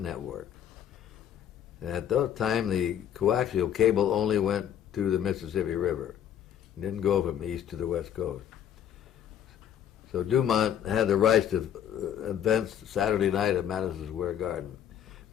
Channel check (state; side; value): quieter; right; 9.8 dB